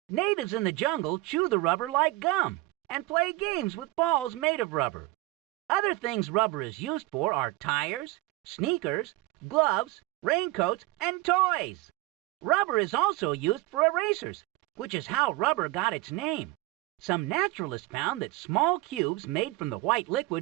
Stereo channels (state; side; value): quieter; left; 19.7 dB